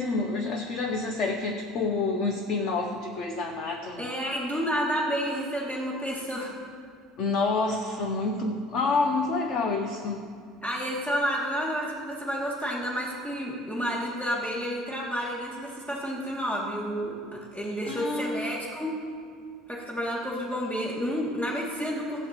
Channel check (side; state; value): both; normal; correlation 0.51